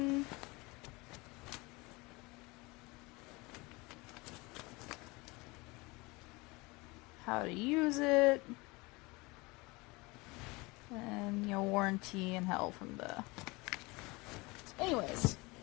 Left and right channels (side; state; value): right; quieter; 24.5 dB